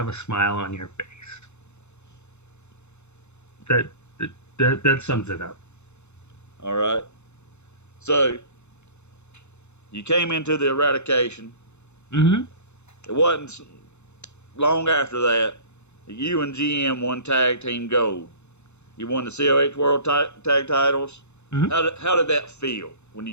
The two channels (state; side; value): late; right; 0.82 ms